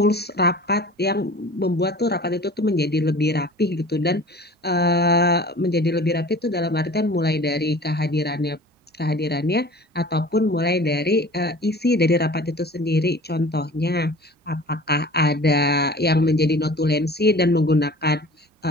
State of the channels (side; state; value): both; normal; correlation 0.42